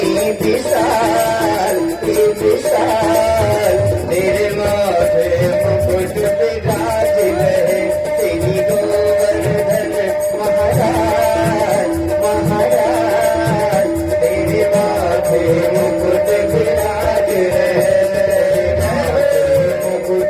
विशाल, विशाल, तेरे माथे मुकुट विराज रहे। तेरी गोवर्धन महाराज, महाराज, तेरे माथे मुकुट विराज रहे। मुकुट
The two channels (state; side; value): identical; both; correlation 1.00